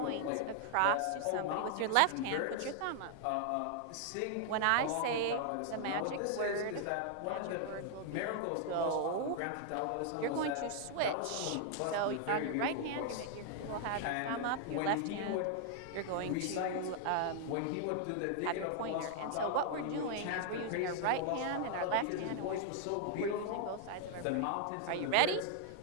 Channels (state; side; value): different; both; correlation 0.00